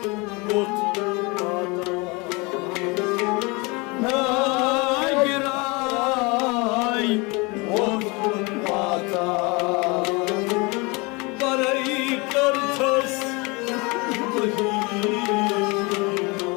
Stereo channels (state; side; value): quieter; right; 27.4 dB